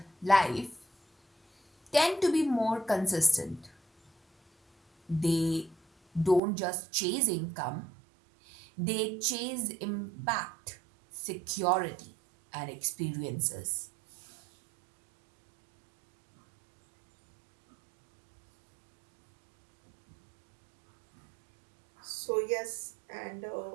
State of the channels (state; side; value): drops out; left; at 6.4 s